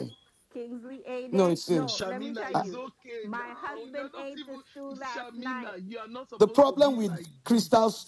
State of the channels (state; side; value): identical; both; correlation 1.00